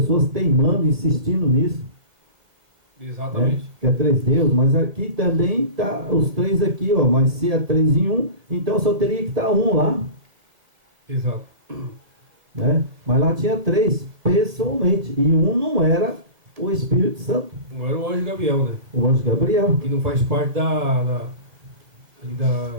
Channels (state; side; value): late; left; 1.7 ms